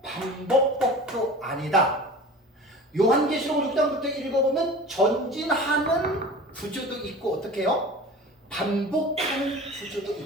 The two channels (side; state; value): both; normal; correlation 0.38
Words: 반복법도 아니다. 요한계시록 6장부터 읽어보면 전진하는 구조도 있고 어떻게 해요? 반복하는 구조도